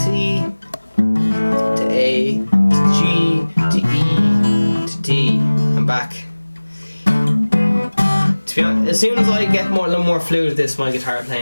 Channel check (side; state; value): both; inverted; correlation -1.00